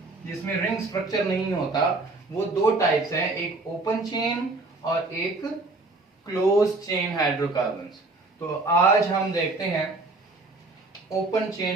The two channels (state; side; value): quieter; left; 3.2 dB